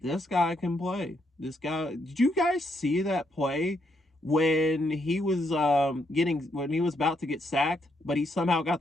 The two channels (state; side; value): normal; both; correlation 0.76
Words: guy can play. This guy, did you guys see that play when he was when he was about to get sacked, but he somehow got